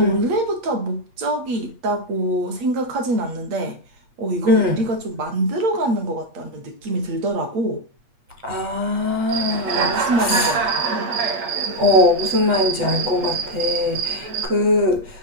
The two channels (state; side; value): late; left; 8.4 ms